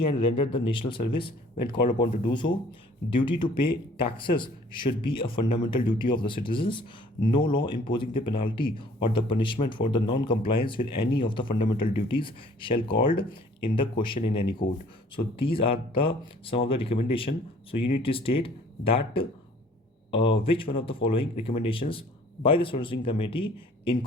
and render the national service when called upon to do so. Duty to pay taxes should be a fundamental duty of the citizens. No law imposing the penalty or the punishment for the non-compliance with any of the fundamental duties shall called in the question in any court. So these are some of the recommendation. So you need to state that which one of the following recommendations by the Swan Singh Committee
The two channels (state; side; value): normal; both; correlation 0.55